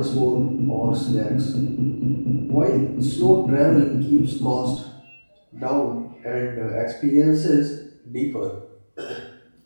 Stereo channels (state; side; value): inverted; both; correlation -1.00